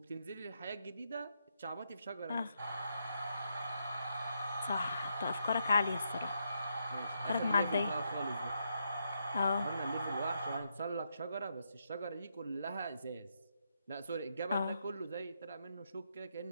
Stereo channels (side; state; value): both; inverted; correlation -0.80